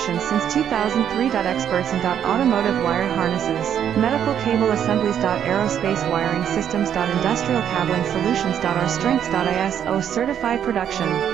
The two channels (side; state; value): left; quieter; 9.2 dB